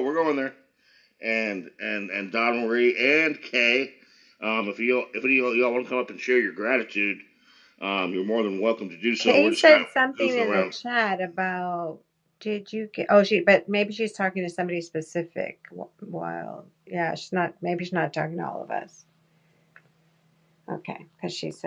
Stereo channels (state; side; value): identical; both; correlation 1.00